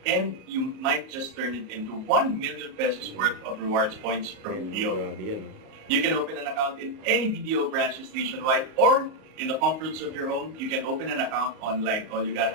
and you might just turn it into 1 million pesos worth of rewards points from BDO. Grabe yan. You can open an account in any BDO branches nationwide or in the comforts of your home. You can open an account online. All you gotta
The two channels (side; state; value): left; late; 38 ms